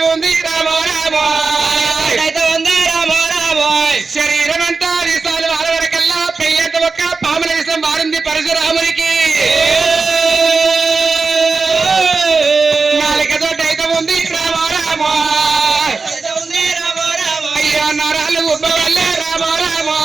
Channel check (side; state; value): left; quieter; 4.3 dB